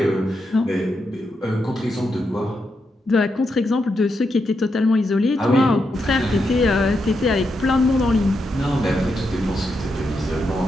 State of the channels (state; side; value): normal; both; correlation 0.84